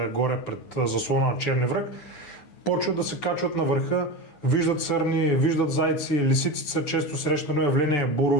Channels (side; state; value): right; late; 9.7 ms